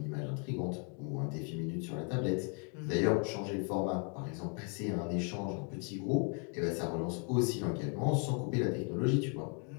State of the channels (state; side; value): quieter; right; 39.4 dB